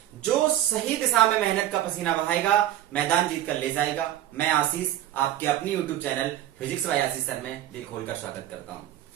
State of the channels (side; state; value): left; quieter; 12.8 dB